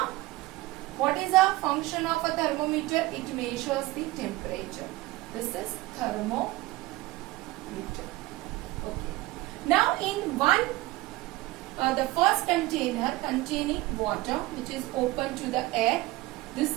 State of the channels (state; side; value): quieter; left; 19.3 dB